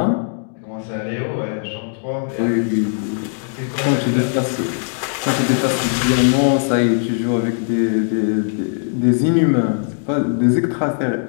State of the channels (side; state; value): right; silent; digital silence